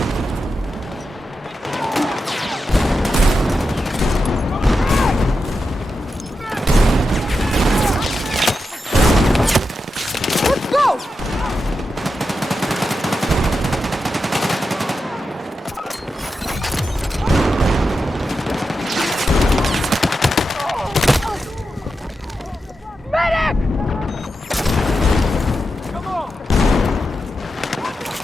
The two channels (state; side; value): normal; both; correlation 0.89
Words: Let's go! Medic! Come on!